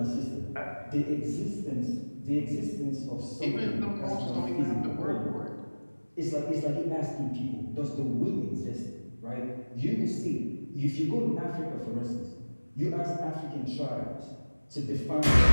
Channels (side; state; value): both; inverted; correlation -1.00